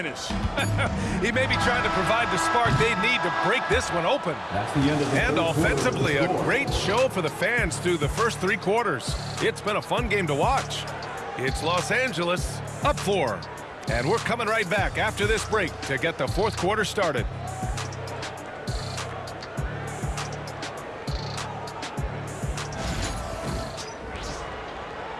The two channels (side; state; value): both; identical; correlation 1.00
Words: He may be trying to provide the spark they need to break this one open. That's the end of the And third offensively, a quarter. great show for the fans through the first 3 quarters. It's been a fun game to watch. It's Los Angeles up 4. And we're coming right back after this break to get the fourth quarter started.